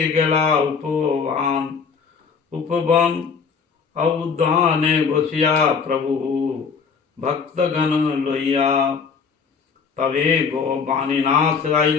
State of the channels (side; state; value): right; quieter; 5.8 dB